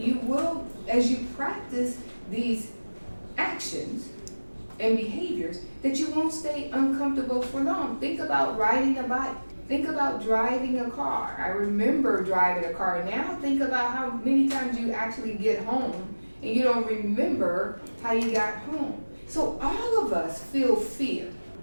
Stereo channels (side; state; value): both; inverted; correlation -1.00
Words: will, as you practice these actions and behaviors, that you won't stay uncomfortable for long. Think about riding a bike. Think about driving a car. I remember driving a car. Now think about how many times you actually get home and you don't remember how you got home. So all of us feel fear.